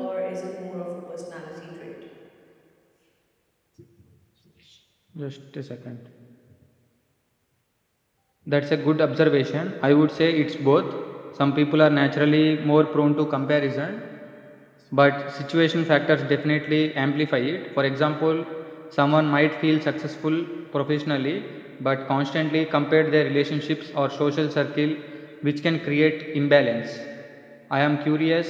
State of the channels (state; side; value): identical; both; correlation 1.00